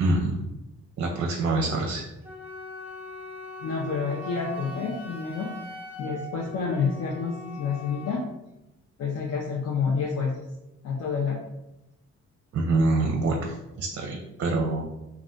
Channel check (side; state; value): both; normal; correlation 0.50